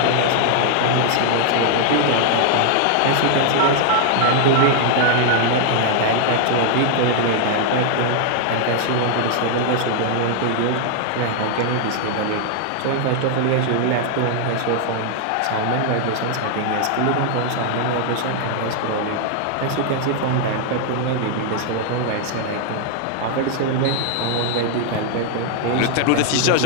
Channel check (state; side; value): different; both; correlation 0.00